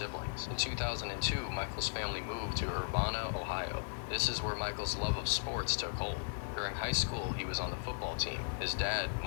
In 2002, Michael's family moved to Urbana, Ohio. This is where Michael's love of sports took hold. During high school, he was on the football team. His dad,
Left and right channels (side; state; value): right; silent; digital silence